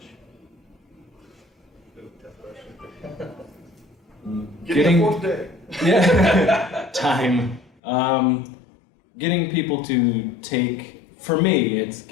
Getting a 4th day. Yeah. Time. Getting people to for me, it's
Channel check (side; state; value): right; drops out; at 7.7 s